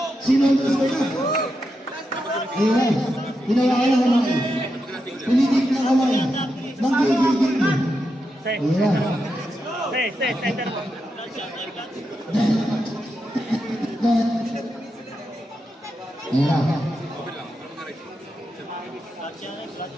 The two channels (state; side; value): normal; both; correlation 0.86